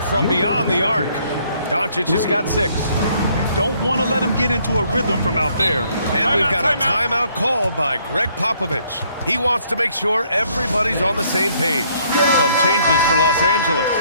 from beyond the arc. Doncic has got 6. Don't want to let him get into a rhythm from out there. And we've got a timeout called by Greg Popovich. He wants to make sure everybody's on the same page. Some changes for Los Angeles.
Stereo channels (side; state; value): both; inverted; correlation -0.66